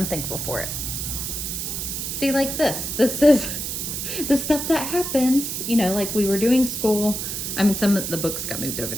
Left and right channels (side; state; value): right; noise; hiss, 4 dB below the sound